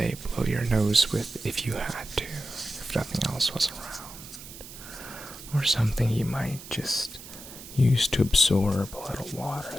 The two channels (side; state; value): right; noise; hiss, 15 dB below the sound